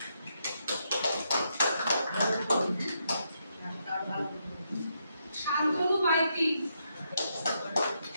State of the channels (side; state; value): both; inverted; correlation -0.79